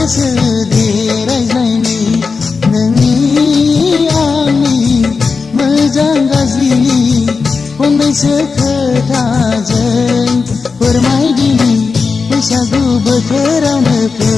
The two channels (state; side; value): quieter; right; 4.8 dB